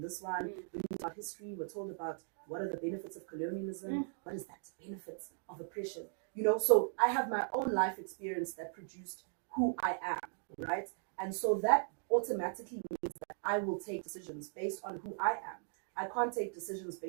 this one. We read about history, we're told about what are the benefits of colonialism, what is that benefits of oppression, you know. So I have my own life experience that produced who I am, right? And so that automatically means that I will take decisions based on who I am. I can't take decisions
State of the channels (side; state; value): left; silent; 52 dB below the other